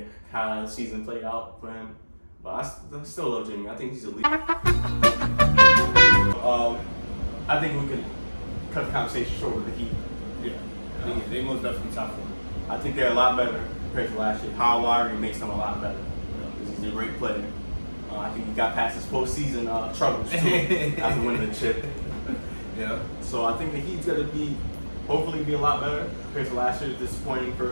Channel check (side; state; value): both; inverted; correlation -1.00